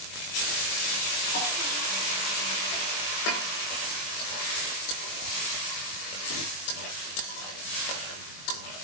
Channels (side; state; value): right; late; 20 ms